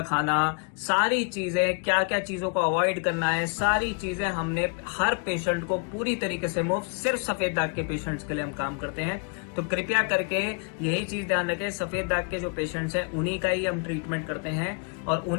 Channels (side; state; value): right; quieter; 38.6 dB